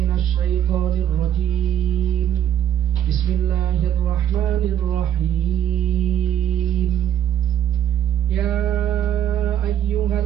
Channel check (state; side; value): quieter; left; 10.2 dB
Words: syaithanir rajim. Bismillahirrahmanirrahim. Ya